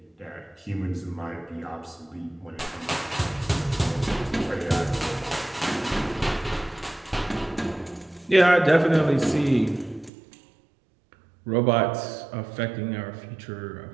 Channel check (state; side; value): drops out; left; at 10.1 s